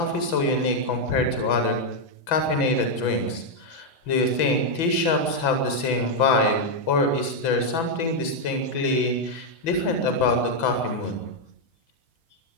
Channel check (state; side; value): late; right; 6.0 ms